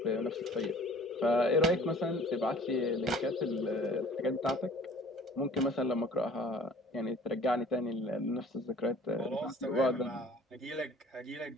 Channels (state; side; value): normal; both; correlation 0.50